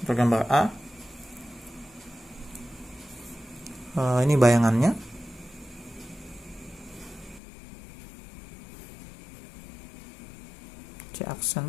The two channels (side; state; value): right; drops out; at 7.4 s